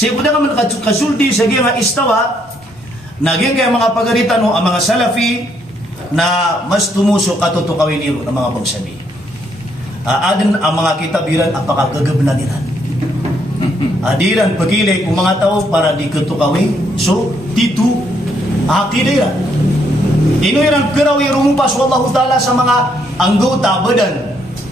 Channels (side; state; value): both; normal; correlation 0.72